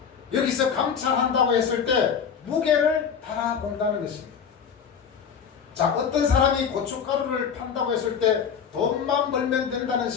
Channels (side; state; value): right; quieter; 7.1 dB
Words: 여기서 감찰한다고 했을 때 무게를 달아본다는 것입니다. 자, 어떤 사람이 고춧가루를 판다고 했을 때 돈만 벌면 된다는